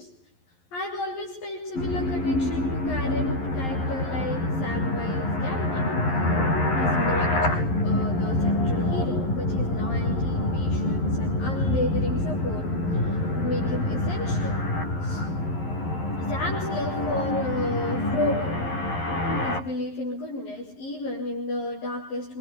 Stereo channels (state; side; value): late; right; 11 ms